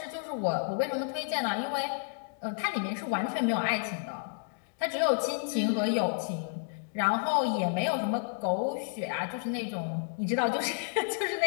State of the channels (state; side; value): silent; right; digital silence